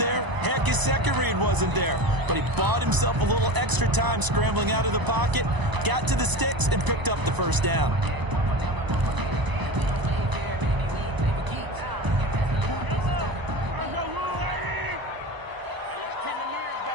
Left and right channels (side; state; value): left; late; 1.0 ms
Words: Heck, his second read wasn't there. But he bought himself a little extra time scrambling out of the pocket, got to the sticks, and picked up the first down.